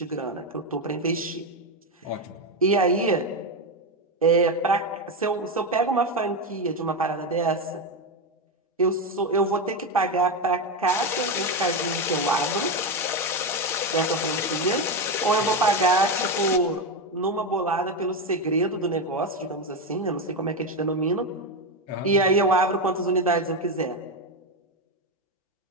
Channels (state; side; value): normal; both; correlation 0.12